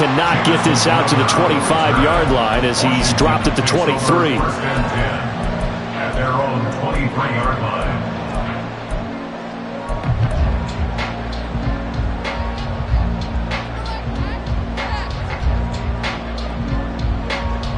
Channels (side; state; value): both; identical; correlation 1.00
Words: get this out to the 25-yard line as he's dropped at the 23. First and 10 at their own 23-yard line.